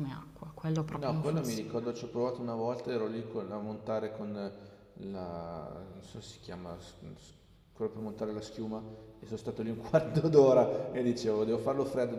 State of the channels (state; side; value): identical; both; correlation 1.00